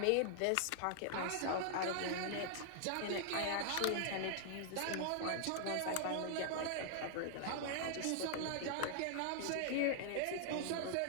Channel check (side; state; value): both; different; correlation -0.01